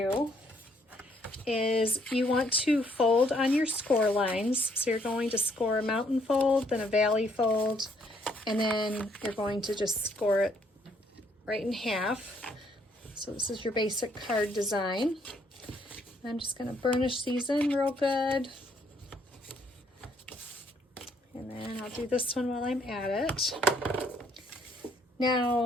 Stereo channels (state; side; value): normal; both; correlation 0.68